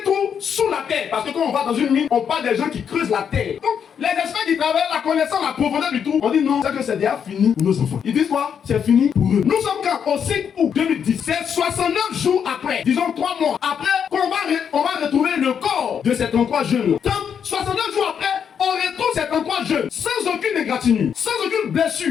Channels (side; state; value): right; quieter; 7.6 dB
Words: trou sous la terre. Parce que quand on va dans une mine, on parle des gens qui creusent la terre. Donc les experts qui travaillent la connaissant la profondeur du trou, on dit non, c'est que c'est déjà fini pour nos enfants. Ils disent quoi? C'est fini pour eux. Nous sommes quand? Au 5 août 2010. C'est 69 jours après, disons 3 mois après, on va retrouver le corps de ces 33 jeunes. 69 jours après, on retrouve ces 33 jeunes sans aucune égratignure, sans aucune